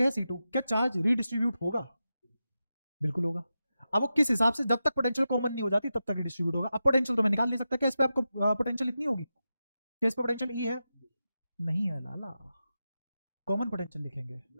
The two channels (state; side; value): inverted; both; correlation -0.91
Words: है C2, क्या चार्ज रीडिस्ट्रीब्यूट होगा? बिल्कुल होगा। अब वो किस हिसाब से, जब तक पोटेंशियल कॉमन नहीं हो जाती तब तक रीडिस्ट्रीब्यूट होगा। अब पोटेंशियल तो मैं निकाल नहीं सकता, क्या इस पे आपको पोटेंशियल इतनी होगी? क्या इस पे पोटेंशियल ई है? नहीं है लाला, कॉमन पोटेंशियल लिखेंगे।